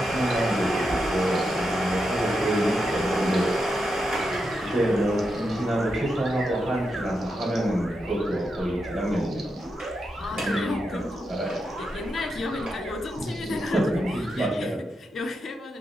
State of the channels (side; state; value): both; normal; correlation 0.85